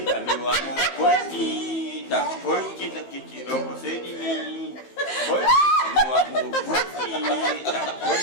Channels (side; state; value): right; late; 15 ms